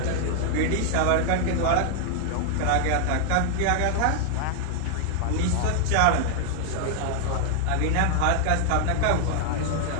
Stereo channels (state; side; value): different; both; correlation 0.00